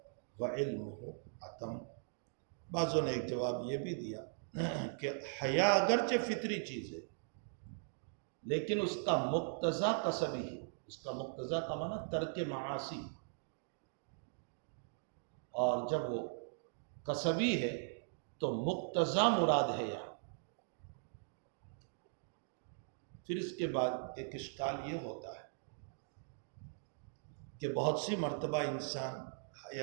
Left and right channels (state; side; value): silent; left; digital silence